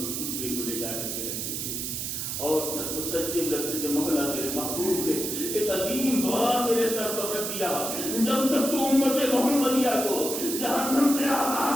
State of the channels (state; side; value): noise; right; hiss, 3 dB below the sound